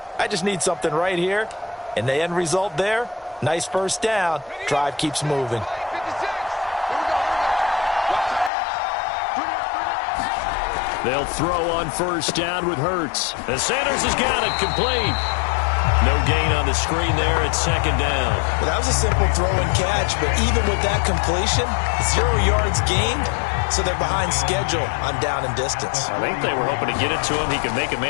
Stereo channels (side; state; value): right; drops out; at 8.5 s